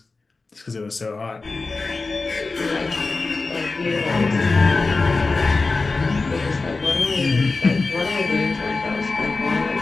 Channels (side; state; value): right; quieter; 3.8 dB